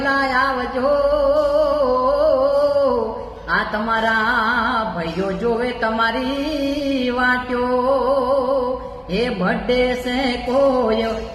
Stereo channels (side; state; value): both; identical; correlation 1.00